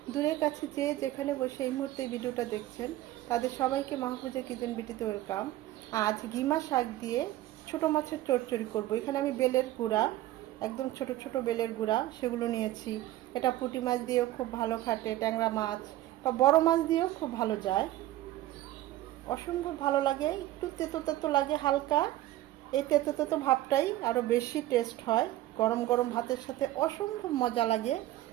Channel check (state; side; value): quieter; left; 15.2 dB